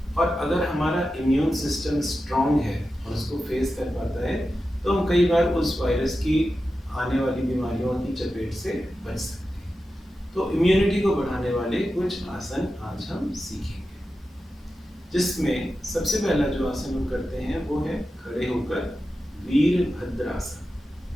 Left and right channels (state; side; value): normal; both; correlation 0.92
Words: और अगर हमारा इम्यून सिस्टम स्ट्रांग है और उसको फेस कर पाता है, तो हम कई बार उस वायरस की आने वाली बीमारियों की चपेट से बच सकते हैं। तो इम्यूनिटी को बढ़ाने वाले कुछ आसन आज हम सीखेंगे, जिसमें सबसे पहला जो आसन हम करते हैं वो है खड़े होकर वीरभद्रासन।